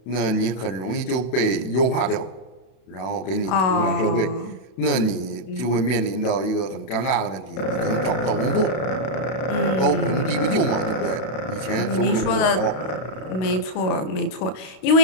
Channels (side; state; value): right; late; 32 ms